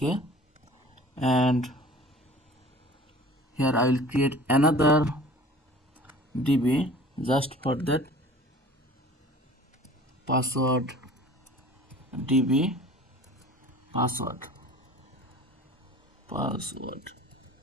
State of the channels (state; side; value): normal; both; correlation 0.45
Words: and here I will create another DB just for that password DB password.